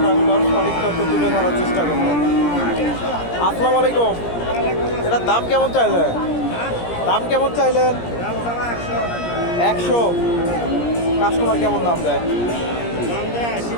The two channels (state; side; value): late; right; 17 ms